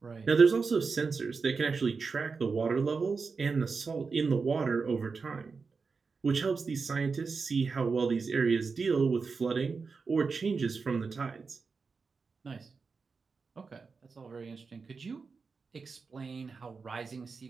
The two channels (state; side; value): quieter; left; 4.8 dB